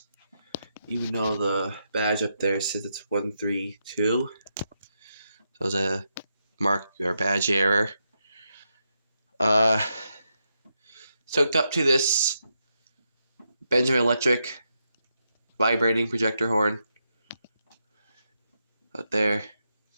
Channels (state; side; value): inverted; both; correlation -0.83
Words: even though the badge up there says it's 132. So there's a mark or badge error. Hooked up to this Benjamin Electric vibrating projector horn out there.